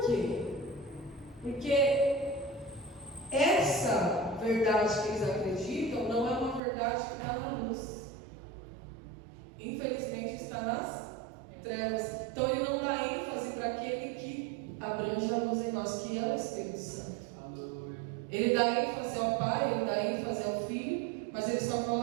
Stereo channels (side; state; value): left; drops out; at 6.6 s